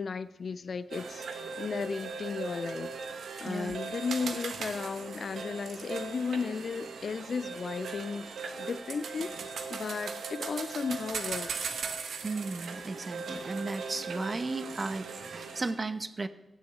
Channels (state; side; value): normal; both; correlation 0.84